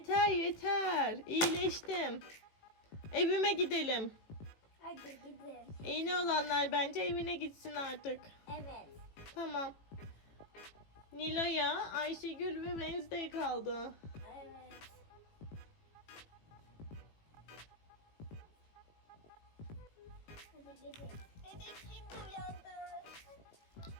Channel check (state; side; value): late; right; 18 ms